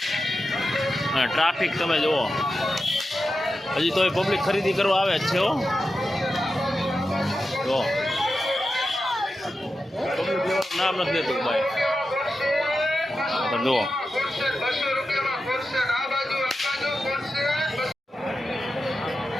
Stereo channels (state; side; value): normal; both; correlation 0.91